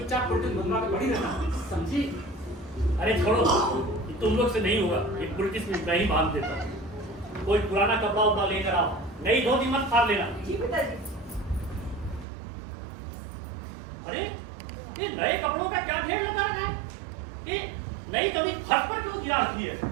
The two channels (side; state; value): left; drops out; at 12.2 s